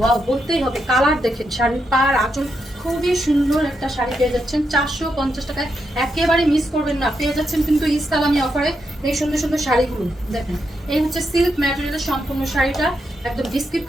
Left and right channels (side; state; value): both; normal; correlation 0.83